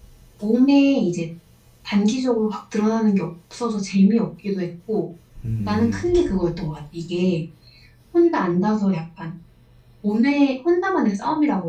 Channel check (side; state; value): both; identical; correlation 1.00